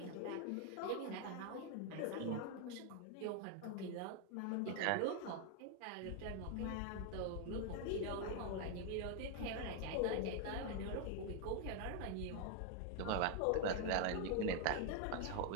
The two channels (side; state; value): both; different; correlation 0.00